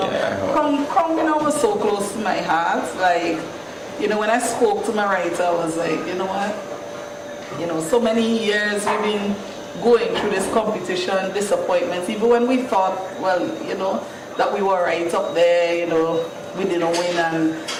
Yeah, Kong Mino was so close to my heart. Like, when I spoke to my writer, I was like, you know what? So many years we've been going through this competition, disappointments, even when we thought, well, that we were right up there, we didn't win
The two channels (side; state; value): both; identical; correlation 1.00